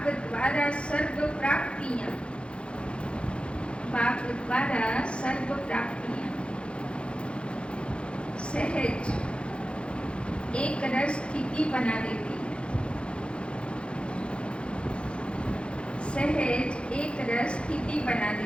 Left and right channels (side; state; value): right; late; 0.057 ms